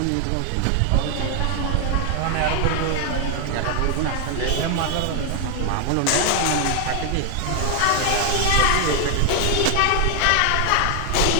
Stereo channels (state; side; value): different; both; correlation 0.00